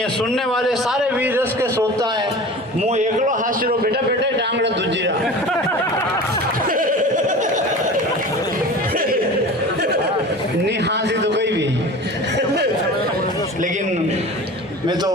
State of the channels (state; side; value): normal; both; correlation 0.36